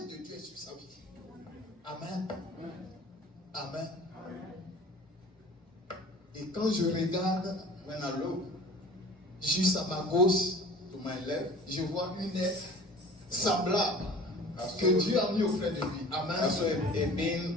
de Dieu est sur sa vie. Amen. Amen. Et quand je regarde, when I look, juste à ma gauche, to my left, je vois une aide semblable que Dieu a mis auprès de lui. Amen.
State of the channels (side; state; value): both; normal; correlation 0.44